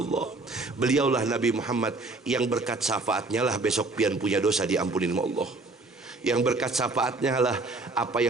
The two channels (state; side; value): quieter; left; 3.4 dB